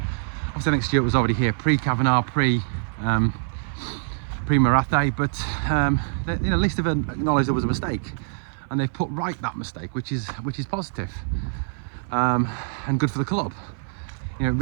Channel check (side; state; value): left; silent; 58 dB below the other